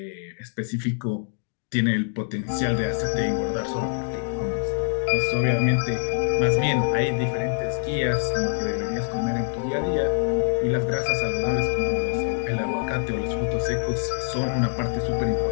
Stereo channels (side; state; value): right; silent; 56 dB below the other